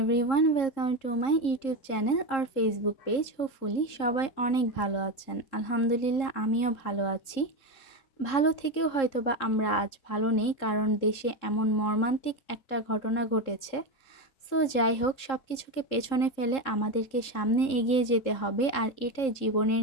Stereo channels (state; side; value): late; right; 3.7 ms